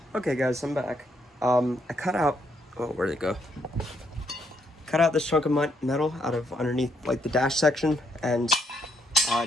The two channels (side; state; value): both; normal; correlation 0.73